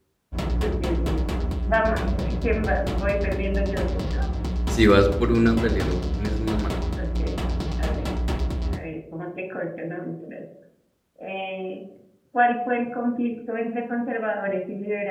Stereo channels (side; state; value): both; identical; correlation 1.00